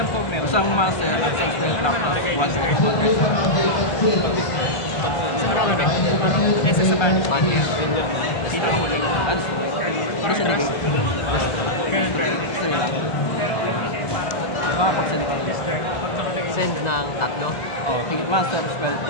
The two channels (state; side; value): late; right; 1.4 ms